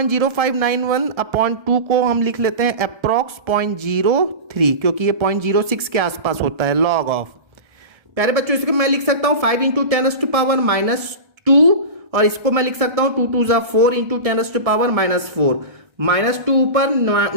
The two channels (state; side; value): late; left; 1.7 ms